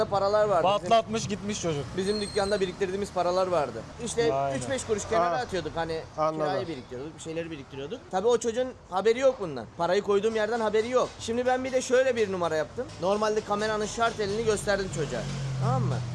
paralar vardı. Patlatmış gitmiş çocuk. Bizim dükkanda biriktirdiğimiz paralar vardı. İşte Aynen. 3-5 kuruş kenara Ha. atıyorduk. Hani Anladım. kirayı biriktiriyorduk, bir şeyleri biriktiriyorduk. Tabii o çocuğun haberi yok bundan. Parayı koyduğum yerden haberi yok. Şimdi ben bir de şöyle bir numara yaptım. Normalde kameranın şartelini gösterdim çocuğa. Tamam mı?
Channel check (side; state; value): both; identical; correlation 1.00